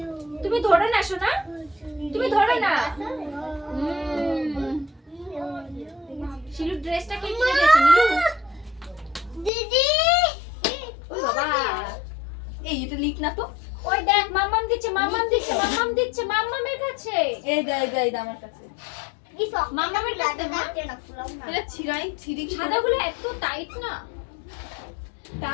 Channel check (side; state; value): right; drops out; at 9.5 s